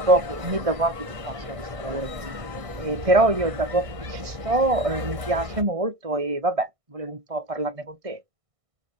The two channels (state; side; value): late; left; 1.6 ms